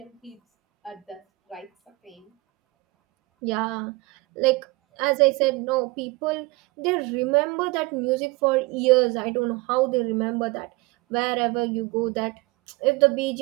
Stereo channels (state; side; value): quieter; left; 23.8 dB